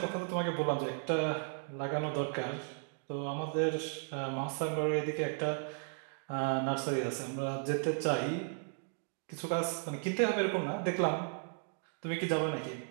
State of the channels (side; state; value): left; silent; 54 dB below the other